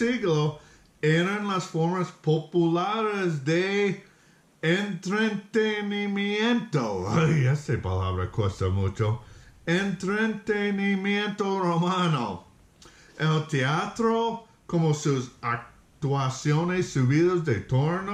eran las formas populares de entretenimiento. Ay, esa palabra cuesta mucho. Entretenimiento romano. El teatro, como sus actuaciones subidas de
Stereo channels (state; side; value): identical; both; correlation 1.00